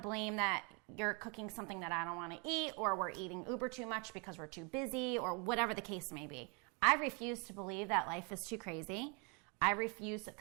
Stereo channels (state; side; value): quieter; left; 32.9 dB